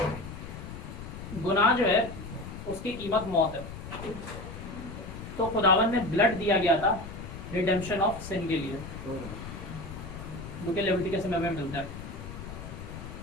गुनाह जो है उसकी कीमत मौत है। तो खुदावन में ब्लड दिया गया था रिडेम्पशन ऑफ सिन के लिए, जो कि लेविटिकस में हमें मिलता है।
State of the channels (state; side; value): noise; left; rumble, 10 dB below the sound